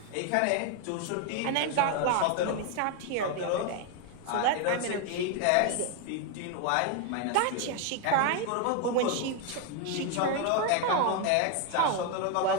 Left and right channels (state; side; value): different; both; correlation 0.01